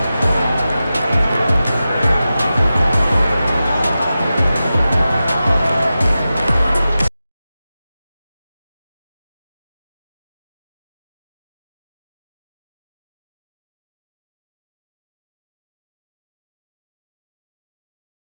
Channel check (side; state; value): both; inverted; correlation -0.93